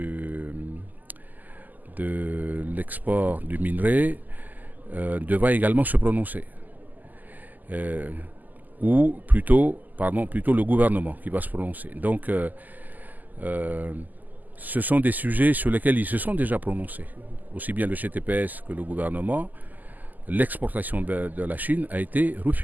l'export du minerai devra également se prononcer. Ou plutôt le gouvernement qui va se prononcer. Donc, ce sont des sujets sur lesquels ils se sont déjà prononcés. Aussi bien le GTPS que le gouvernement. L'exportation de la Chine a été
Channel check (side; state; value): left; late; 0.083 ms